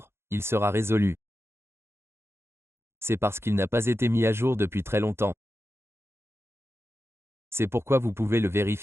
il sera résolu. C'est parce qu'il n'a pas été mis à jour depuis très longtemps. C'est pourquoi vous pouvez le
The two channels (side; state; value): left; late; 0.12 ms